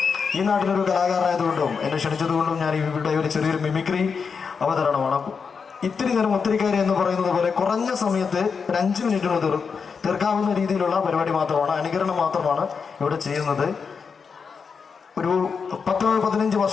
ഈ നാട്ടിലൊരു കലാകാരനായതുകൊണ്ടും എന്നെ ക്ഷണിച്ചതുകൊണ്ടും ഞാൻ ഇവിടെ ഒരു ചെറിയൊരു മിമിക്രി അവതരണമാണ്. ഇത്തിരി നേരം ഒത്തിരിക്കാരി എന്ന് പറയുന്നത് പോലെ കുറഞ്ഞ സമയത്ത് ഒരു 5 മിനിറ്റിന് തീർക്കാവുന്ന രീതിയിലുള്ള പരിപാടി മാത്രമാണ്, അനുകരണം മാത്രമാണ് ഇവിടെ ചെയ്യുന്നത്. ഒരു 10-15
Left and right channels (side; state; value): right; quieter; 5.7 dB